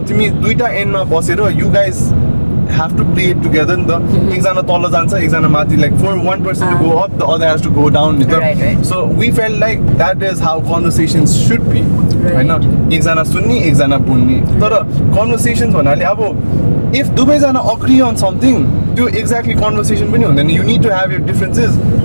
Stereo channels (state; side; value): inverted; both; correlation -1.00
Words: तिमी दुईटा एन्डमा बसेर you guys have to play it together नि त. एकजना तल जान्छ, एकजना माथि, like for one person to go up, the other has to go down नि त. Right. So we felt like that is how conversations should be. हैन, एकजना सुन्ने, एकजना बोल्ने. तर conversations भन्नाले अब if दुवैजना agree on something, त्यो exactly conversation पनि हुँदैन. You need to have your differences